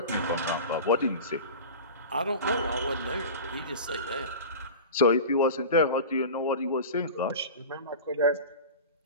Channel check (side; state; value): both; inverted; correlation -0.32